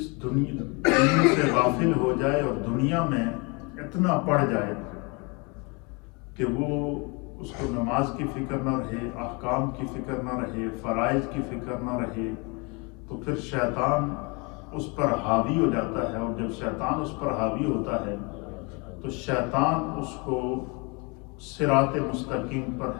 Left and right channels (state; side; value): quieter; right; 30.4 dB